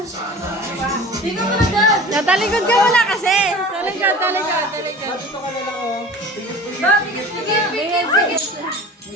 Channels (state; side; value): normal; both; correlation 0.39